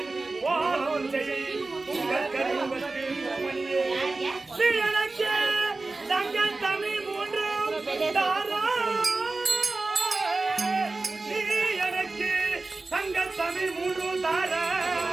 வாழும் செய் உங்கள் கருவத்தில் மணியே. நீ எனக்கு தங்கள் தமிழ் மூன்றும் தாராய். நீ எனக்கு தங்கள் தமிழ் மூன்றும்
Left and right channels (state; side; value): quieter; left; 3.5 dB